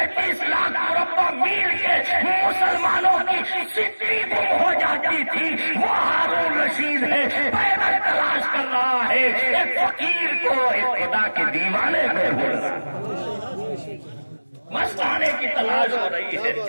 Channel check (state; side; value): inverted; both; correlation -1.00